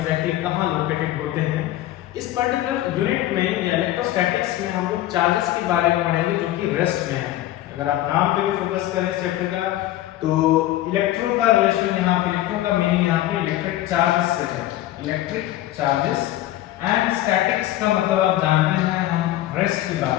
कहाँ लोकेटेड होते हैं। इस पर्टिकुलर यूनिट में या इलेक्ट्रोस्टैटिक्स में हम लोग चार्जेस के बारे में पढ़ेंगे जो कि रेस्ट में है। अगर आप नाम पे भी फोकस करें इस चैप्टर का, तो इलेक्ट्रो का रिलेशन यहाँ पे, इलेक्ट्रो का मीनिंग यहाँ पे इलेक्ट्रिक चार्जेस से है। इलेक्ट्रिक चार्जेस एंड स्टैटिक्स का मतलब आप जानते हैं हम रेस्ट की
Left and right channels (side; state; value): right; quieter; 14.5 dB